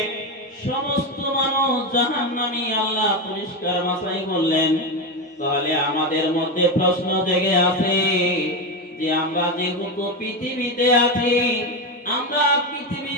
সমস্ত মানুষ জাহান্নামী। আল্লাহ পরিষ্কার ভাষায় বললেন। তাহলে আমাদের মধ্যে প্রশ্ন জেগে আছে যে আমরা যেহেতু পৃথিবীতে আছি, আমরা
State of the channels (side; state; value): both; normal; correlation 0.14